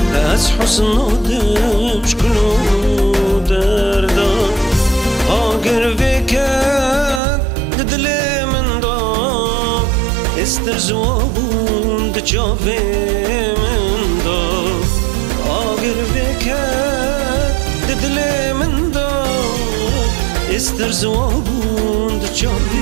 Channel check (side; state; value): left; drops out; at 7.2 s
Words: از حسن آدم شکلو دردا. آگر وکد دل من داد، استر زوابون دچاوه من داد. آگر وکد دل من داد، استر زوابون